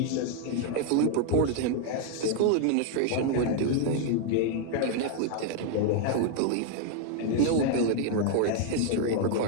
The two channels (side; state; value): both; different; correlation 0.00